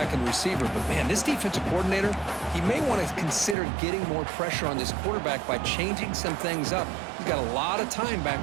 and receiver. But, man, this defensive coordinator, he may want to consider getting more pressure on this quarterback by changing some things up. He's got a lot of time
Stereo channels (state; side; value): drops out; left; at 3.6 s